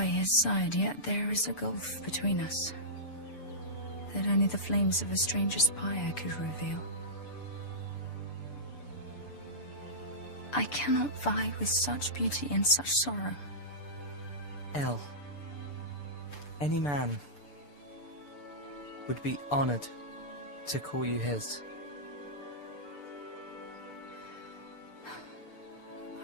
his side, yet there is a gulf between us that only the flames of a stranger's pyre could reveal. I cannot vie with such beauty and such sorrow. El, any man would be honored to call you his.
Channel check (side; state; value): right; late; 6.9 ms